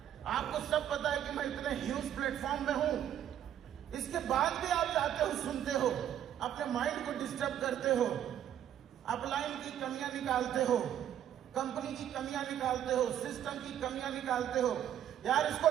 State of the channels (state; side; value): quieter; left; 10.5 dB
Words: आपको सब पता है कि मैं इतने ह्यूज प्लेटफॉर्म में हूं, इसके बाद भी आप जाते हो, सुनते हो, अपने माइंड को डिस्टर्ब करते हो, अपलाइन की कमियां निकालते हो, कंपनी की कमियां निकालते हो, सिस्टम की कमियां निकालते हो। यार इसको